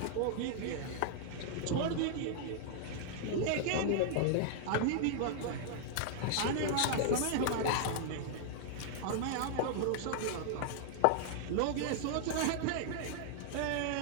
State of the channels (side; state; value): both; different; correlation -0.01